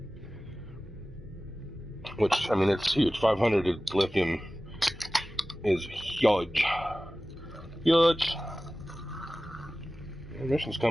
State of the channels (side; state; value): both; normal; correlation 0.97